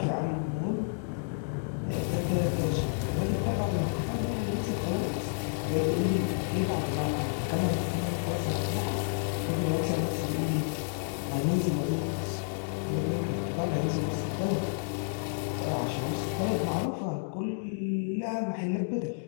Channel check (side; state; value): right; silent; digital silence